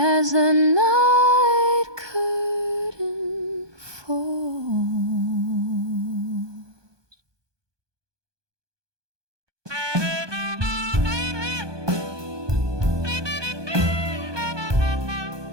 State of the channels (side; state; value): left; late; 1.2 ms